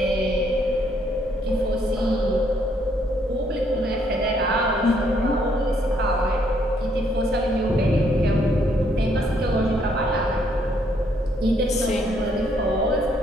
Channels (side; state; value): both; normal; correlation 0.70